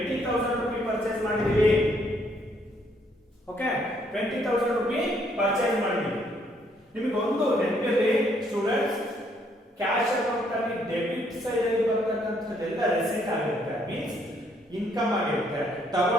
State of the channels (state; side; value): normal; both; correlation 0.69